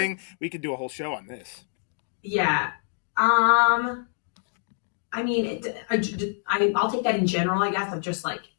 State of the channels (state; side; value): silent; right; 61 dB below the other